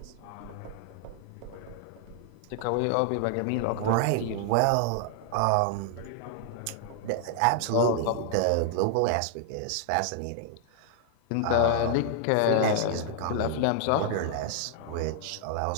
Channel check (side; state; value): both; different; correlation -0.01